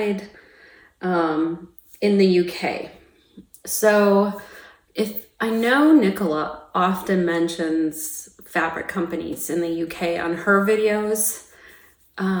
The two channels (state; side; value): identical; both; correlation 1.00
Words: in the UK. So if I know Nicola often mentions fabric companies in the UK on her videos,